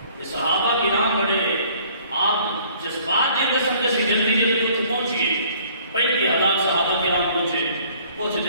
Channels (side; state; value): both; inverted; correlation -0.57